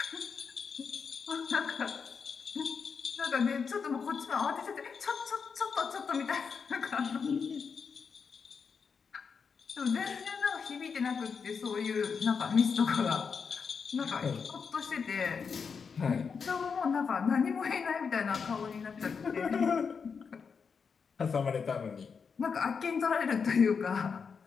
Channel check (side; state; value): right; quieter; 5.8 dB